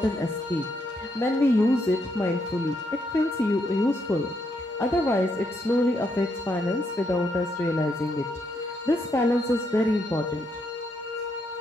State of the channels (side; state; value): both; normal; correlation 0.77